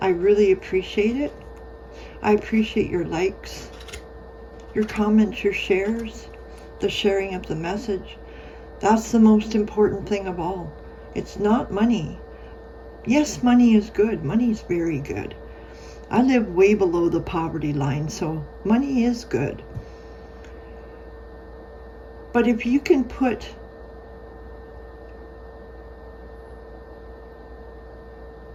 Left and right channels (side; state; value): both; identical; correlation 1.00